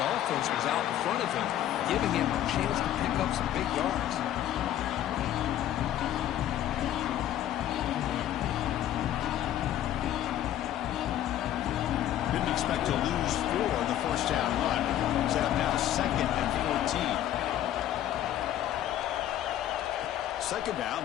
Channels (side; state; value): right; quieter; 12.0 dB